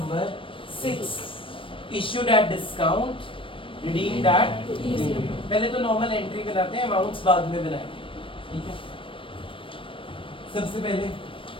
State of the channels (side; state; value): right; late; 0.25 ms